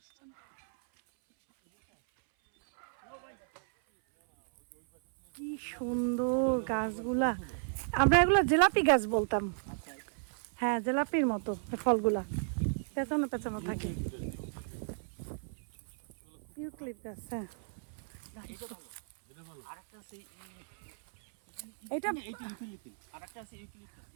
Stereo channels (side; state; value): left; silent; 55 dB below the other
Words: কি সুন্দর গাছগুলা, আমরা এগুলো জিলাপি গাছ বলতাম। হ্যাঁ, জিলাপির মতো ফলগুলা, পেছানো পেছানো থাকে। ইউক্লিপ গাছ, হ্যাঁ। এটা